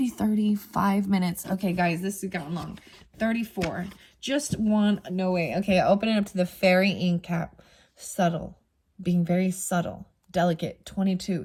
35 minutes. Okay, guys, this has gotten long. 34. Just one. No way. Okay, open it up to the fairy ink cap. Subtle. Being very subtle. Delicate. 22.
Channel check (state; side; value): identical; both; correlation 1.00